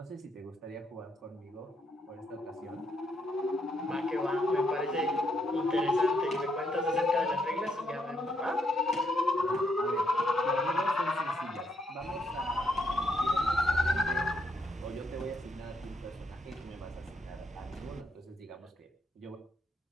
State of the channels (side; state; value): both; normal; correlation 0.75